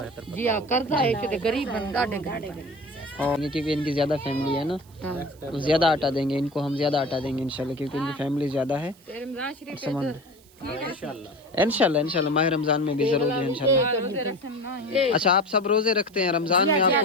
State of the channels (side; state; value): right; noise; hiss, 28 dB below the sound